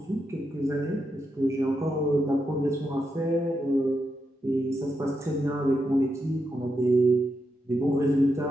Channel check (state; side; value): normal; both; correlation 0.84